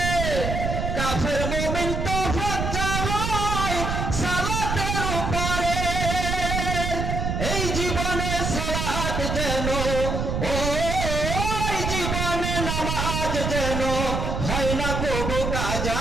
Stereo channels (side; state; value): right; noise; rumble, 1 dB below the sound